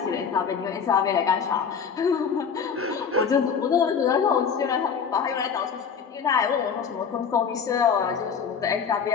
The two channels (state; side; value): quieter; right; 6.6 dB